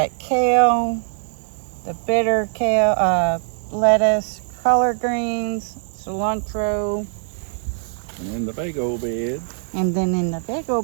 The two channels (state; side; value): silent; left; 56 dB below the other